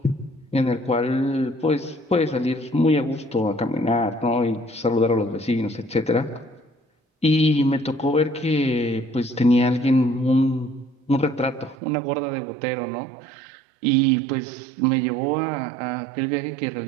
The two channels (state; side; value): drops out; left; at 11.8 s